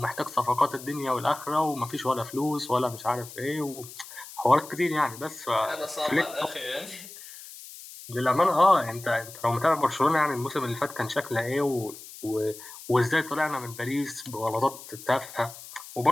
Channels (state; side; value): noise; left; hiss, 15 dB below the sound